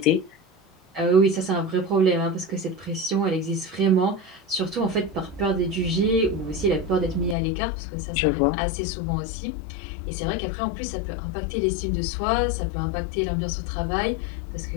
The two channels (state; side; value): drops out; right; at 7.4 s